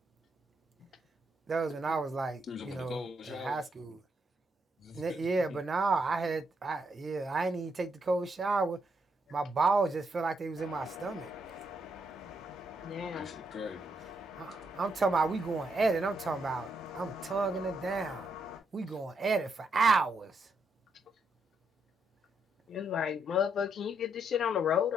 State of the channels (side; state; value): both; normal; correlation 0.78